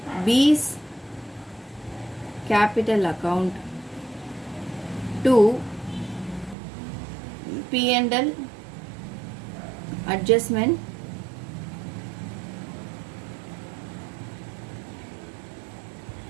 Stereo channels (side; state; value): left; drops out; at 6.6 s